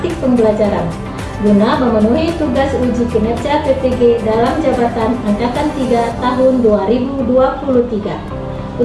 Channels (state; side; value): identical; both; correlation 1.00